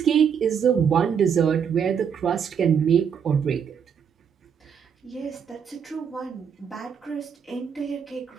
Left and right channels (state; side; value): quieter; left; 7.4 dB